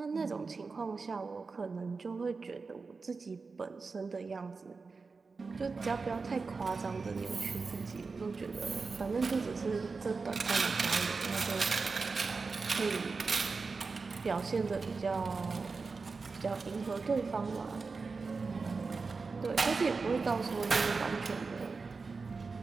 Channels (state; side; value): quieter; left; 4.4 dB